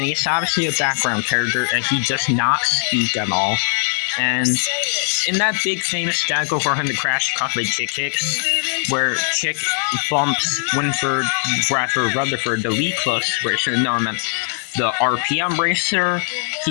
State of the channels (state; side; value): silent; right; 64 dB below the other